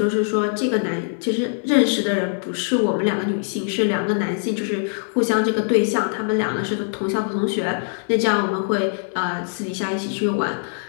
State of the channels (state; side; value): silent; right; digital silence